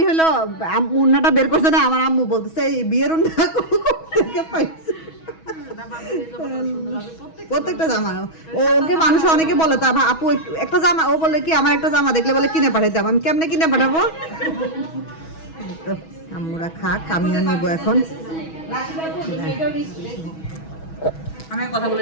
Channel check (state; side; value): late; right; 6.2 ms